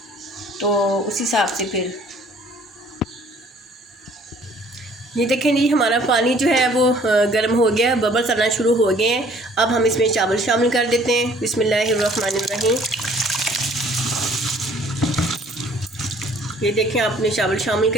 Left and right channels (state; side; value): normal; both; correlation 0.57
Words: तो उस हिसाब से फिर ये देखें जी, हमारा पानी जो है वो गर्म हो गया, बबल्स आना शुरू हो गए हैं। अब हम इसमें चावल शामिल कर देते हैं। बिस्मिल्लाहिर्रहमानिर्रहीम। ये देखें, आपने चावल शामिल